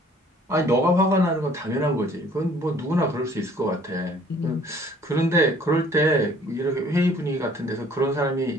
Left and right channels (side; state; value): both; normal; correlation 0.56